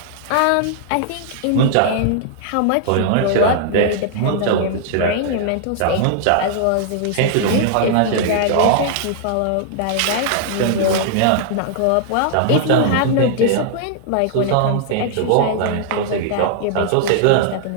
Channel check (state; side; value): different; both; correlation -0.01